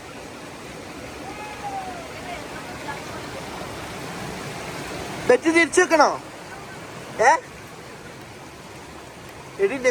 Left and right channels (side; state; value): both; identical; correlation 1.00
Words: ബെറ്റ് തിരിച്ചു വെക്കണോ? എടി എന്നെ